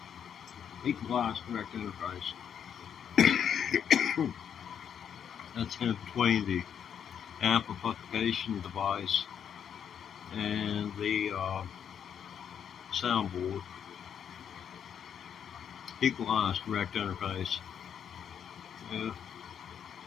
Equalized direct interface. That's in between the amplification device and the soundboard. Equalized direct interface. Yeah,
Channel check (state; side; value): quieter; right; 8.3 dB